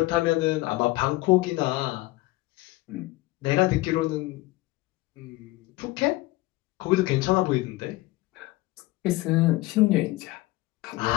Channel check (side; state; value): right; quieter; 19.9 dB